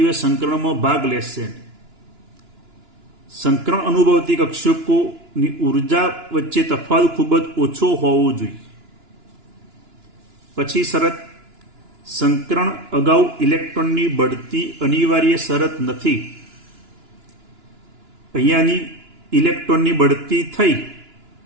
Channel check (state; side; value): late; left; 2.9 ms